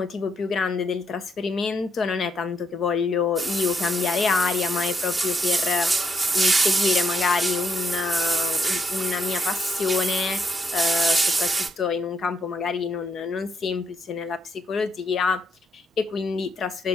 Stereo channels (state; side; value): normal; both; correlation 0.76